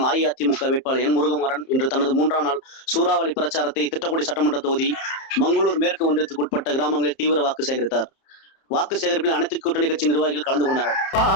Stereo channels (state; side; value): late; right; 30 ms